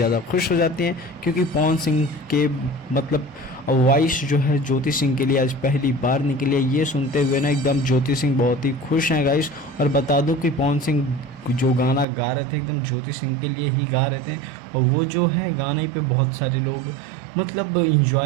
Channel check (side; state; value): left; drops out; at 12.1 s